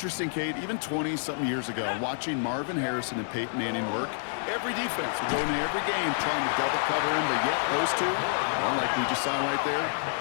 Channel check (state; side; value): silent; right; digital silence